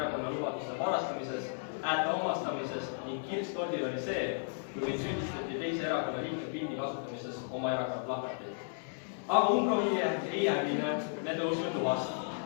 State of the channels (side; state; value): right; silent; digital silence